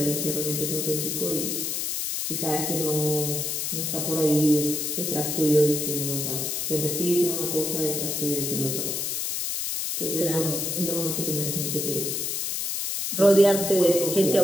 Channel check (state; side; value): noise; left; hiss, 1 dB below the sound